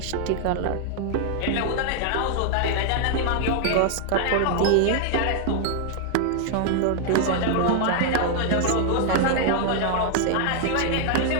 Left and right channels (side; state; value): both; different; correlation 0.00